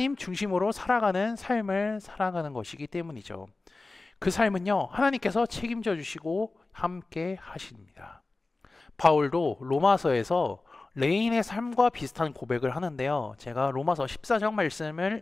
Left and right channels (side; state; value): right; quieter; 3.4 dB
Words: 중심으로 살아가는 삶을 살아가는 것이기 때문이죠. 그 삶은요, 하나님께서 책임져 주시고 함께 하십니다. 바울도 로마서에서 레인의 삶과 비슷한 고백을 하는데요. 제가 로마서 14장 말씀을